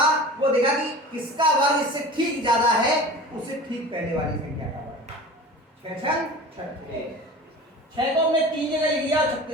वो देखा कि किसका वर्ग इससे ठीक ज्यादा है, उससे ठीक पहले वाली संख्या का वर्ग। 6 6 को हमने 3 जगह लिख दिया और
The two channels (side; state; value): both; normal; correlation 0.37